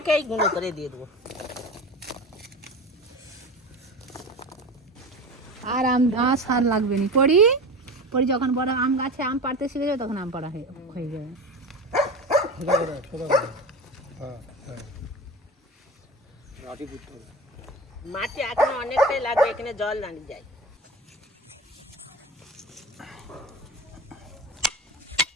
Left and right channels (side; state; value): both; normal; correlation 0.30